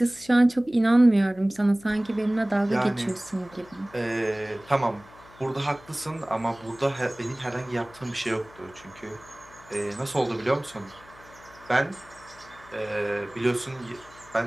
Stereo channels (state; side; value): noise; left; hum, 23 dB below the sound